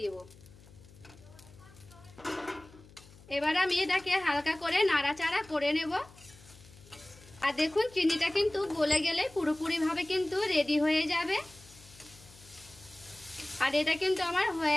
দেব। এবার আমি এটাকে হালকা করে নাড়াচাড়া করে নেব। আর দেখুন চিনিটা কিন্তু গলে গেলে পুরোপুরিভাবে কিন্তু রেডি হয়ে যাবে। আর এটা কিন্তু আমার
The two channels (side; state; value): left; noise; hum, 23 dB below the sound